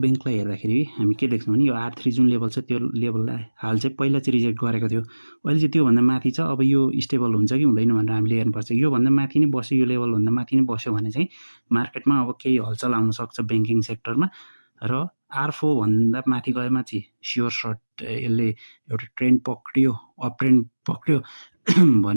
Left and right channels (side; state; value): both; inverted; correlation -1.00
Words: हेर्दाखेरि हामी के देख्छौँ भने यो R3 जुन लेभल छ त्यो लेभललाई हाल चाहिँ पहिला चाहिँ रिजेक्ट गरेको थियो, अहिले चाहिँ त्योभन्दा माथि छ। अब यो स्टेबल हुन्छ कि हुँदैन भनेर हामीले हेर्नुपर्छ। योभन्दा माथि नै बस्यो, यो लेभलभन्दा माथि नै बस्यो भने चाहिँ मार्केटमा अब केही हलचल आउन सक्छ ब्याङ्किङ सेक्टरमा र R4 भन्दा माथि गएमा चाहिँ स्योर सर्ट यसले एउटा ट्रेन्ड पक्रियो, अप ट्रेन्ड पक्रियो